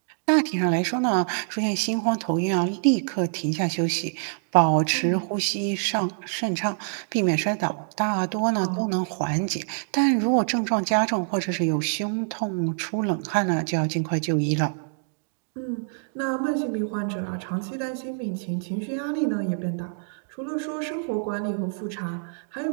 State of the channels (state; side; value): silent; left; digital silence